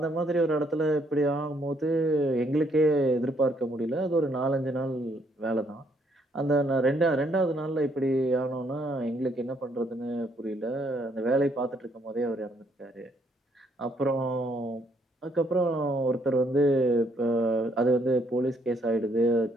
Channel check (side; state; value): both; normal; correlation 0.70